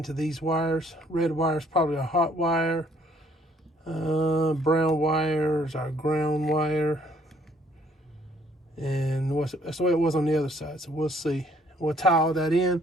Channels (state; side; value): normal; both; correlation 0.64